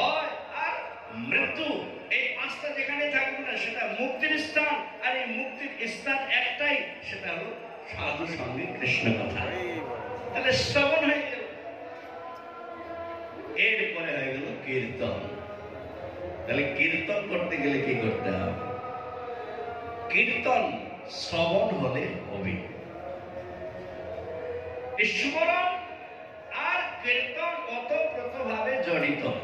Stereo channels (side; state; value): both; identical; correlation 1.00